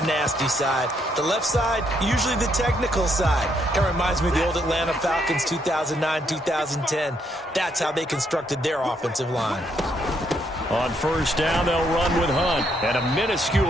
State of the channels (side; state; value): both; normal; correlation 0.74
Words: nasty side. The left side, usually the technical side. Kind of reminds me of the old Atlanta Falcons 2009-2010. That's how they constructed their offensive line. On 1st down, they'll run with Hunt. And a